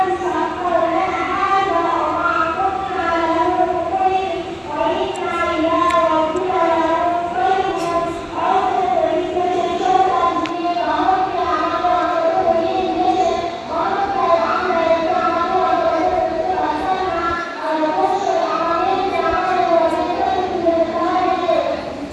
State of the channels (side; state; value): both; identical; correlation 1.00